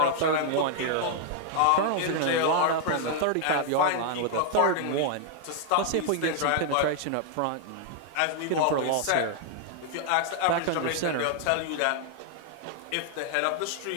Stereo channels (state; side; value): different; both; correlation 0.00